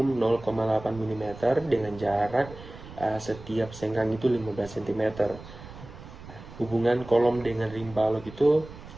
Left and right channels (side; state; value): right; noise; rumble, 16 dB below the sound